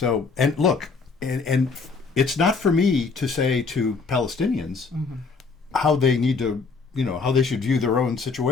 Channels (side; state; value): right; quieter; 4.6 dB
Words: and look, and it's not for me to say to Palestinians how they need to, how they should view their own